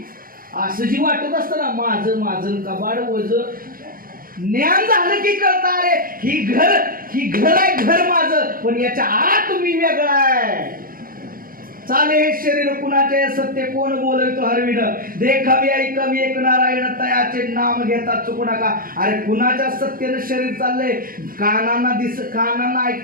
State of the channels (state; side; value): late; left; 0.42 ms